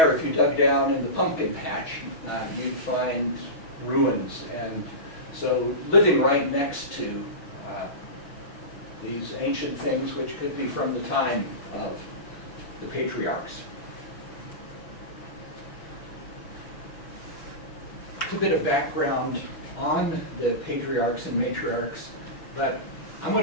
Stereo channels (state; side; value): late; right; 6.1 ms